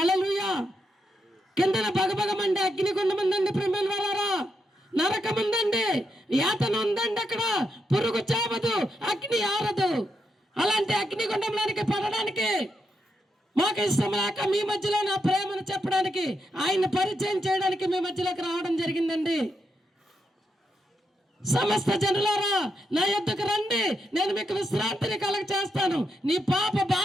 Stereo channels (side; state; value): both; normal; correlation 0.83